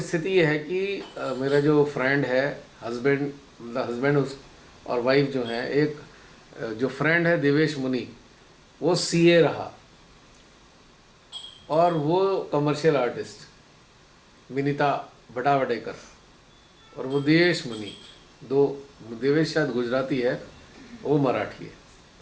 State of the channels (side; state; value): both; identical; correlation 1.00